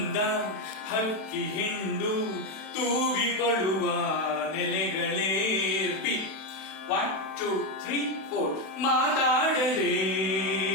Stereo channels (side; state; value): right; late; 31 ms